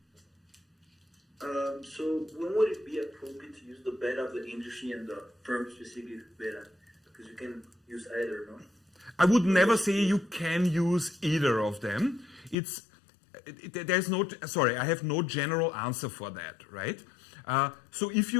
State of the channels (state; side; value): drops out; right; at 12.6 s